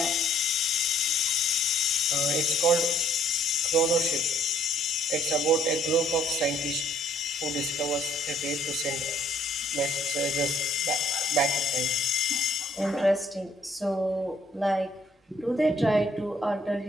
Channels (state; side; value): normal; both; correlation 0.62